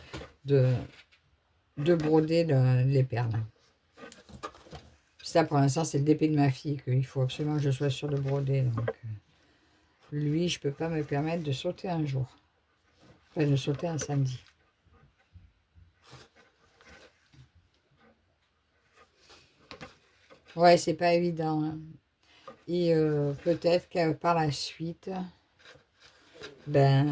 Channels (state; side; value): identical; both; correlation 1.00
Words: de broder les perles. Ça, pour l'instant, c'est le DP de ma fille qu'il faut absolument que je sois sûre de broder. Donc, lui, je peux pas me permettre de sauter un jour. Enfin, de sauter un samedi. Ouais, c'est pas évident. Hein. Et peut-être que par la suite,